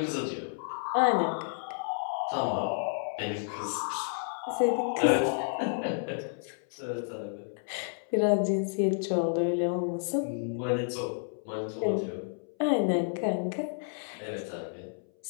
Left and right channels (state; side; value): silent; right; 57 dB below the other